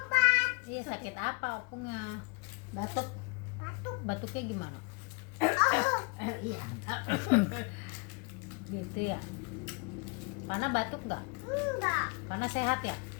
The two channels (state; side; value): quieter; right; 31.8 dB